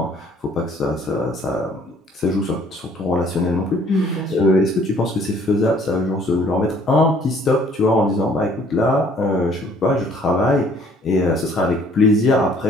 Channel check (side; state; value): both; normal; correlation 0.58